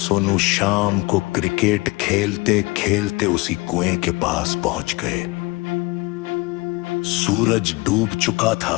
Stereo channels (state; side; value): quieter; right; 24.2 dB